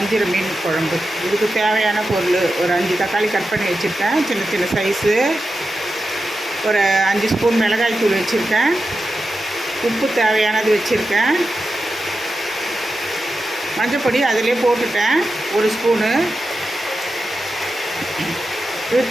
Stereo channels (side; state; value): both; normal; correlation 0.90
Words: மீன் குழம்பு. இதுக்கு தேவையான பொருள் ஒரு 5 தக்காளி கட் பண்ணி வச்சுருக்கேன், சின்ன சின்ன சைஸு. ஒரு 5 ஸ்பூன் மிளகாய் தூள் வச்சுருக்கேன். உப்பு தேவையானது வச்சுருக்கேன். மஞ்சப்பொடி அதிலே போட்டுட்டேன் 1 ஸ்பூனு. இது